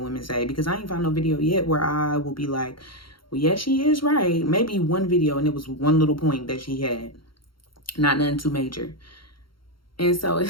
women say, because I ain't found no video yet where I will be like, well, yeah, she is right. Maybe one video, and it was one little point that she had. Not nothing too major. And so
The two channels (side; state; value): right; late; 0.73 ms